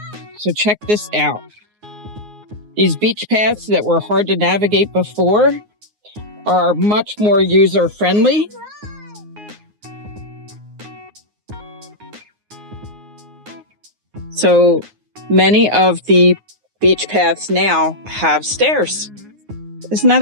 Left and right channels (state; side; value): late; left; 9.6 ms